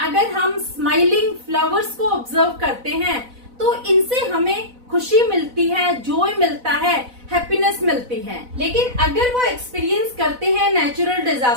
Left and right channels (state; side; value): late; left; 4.0 ms